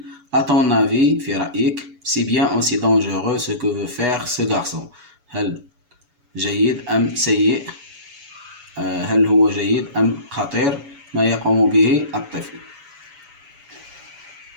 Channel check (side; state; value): left; late; 7.1 ms